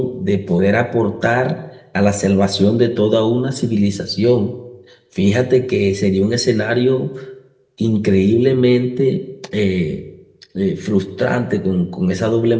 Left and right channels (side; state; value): both; identical; correlation 1.00